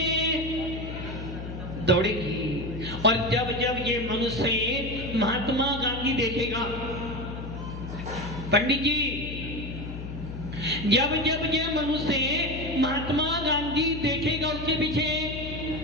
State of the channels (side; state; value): left; noise; hum, 8 dB below the sound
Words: दौड़ेगी। और जब ये मनुष्य महात्मा गांधी देखेगा, पंडित जी, जब ये मनुष्य महात्मा गांधी देखेगा उसके पीछे